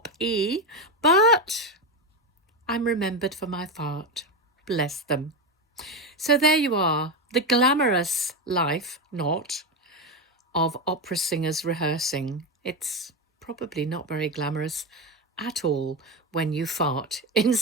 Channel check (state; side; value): normal; both; correlation 0.13